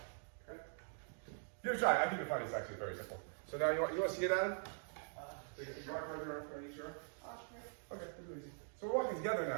Okay? Give it a try. I think you'll find it's actually very simple. So now you want to see it, Adam? So you mark right there, are you sure? Okay, it's really easy. So we're walking together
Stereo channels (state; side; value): silent; left; digital silence